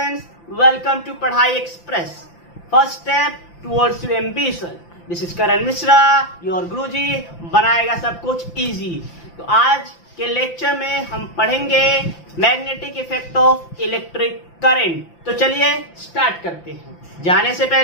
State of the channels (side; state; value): right; late; 5.8 ms